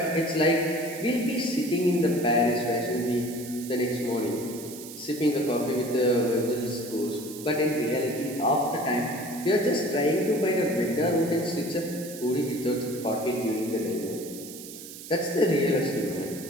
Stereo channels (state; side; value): noise; right; hiss, 13 dB below the sound